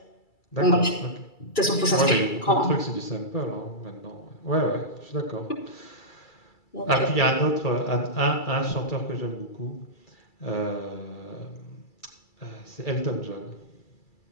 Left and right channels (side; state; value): right; late; 2.3 ms